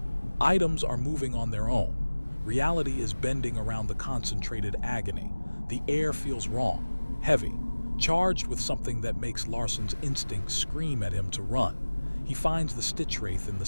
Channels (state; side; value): inverted; both; correlation -1.00